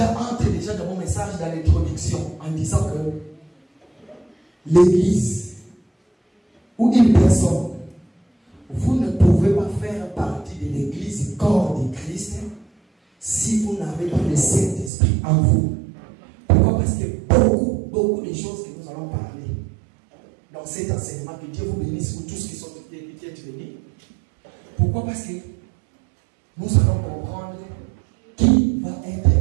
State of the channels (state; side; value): drops out; left; at 14.9 s